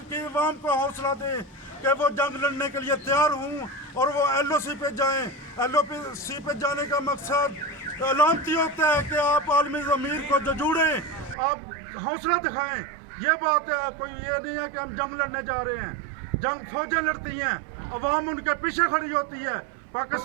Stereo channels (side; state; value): left; drops out; at 11.4 s